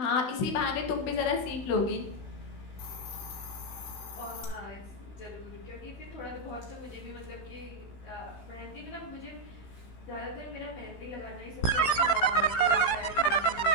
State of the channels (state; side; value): late; right; 16 ms